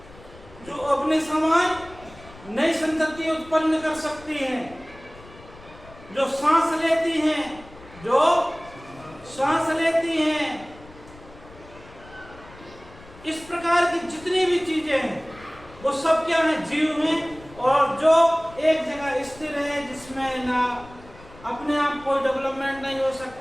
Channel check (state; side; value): noise; left; rumble, 21 dB below the sound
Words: जो अपने समान नई संतति उत्पन्न कर सकती हैं, जो सांस लेती हैं, जो सांस लेती हैं, इस प्रकार की जितनी भी चीजें हैं वो सब क्या है, जीव हैं। और जो एक जगह स्थिर है, जिसमें ना अपने आप कोई डेवलपमेंट नहीं हो